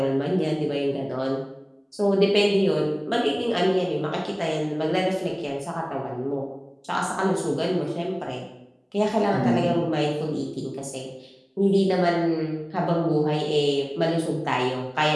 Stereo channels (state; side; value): identical; both; correlation 1.00